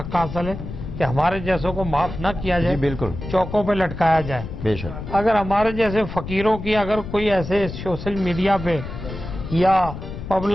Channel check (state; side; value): noise; left; rumble, 9 dB below the sound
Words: حاصل ہے کہ ہمارے جیسوں کو معاف نہ کیا جی جائے، بالکل چوکوں پہ لٹکایا جائے۔ بے شک۔ اگر ہمارے جیسے فقیروں کی اگر کوئی ایسے سوشل میڈیا پہ یا